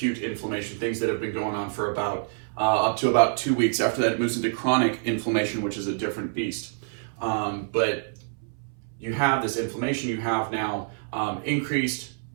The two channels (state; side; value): silent; left; 60 dB below the other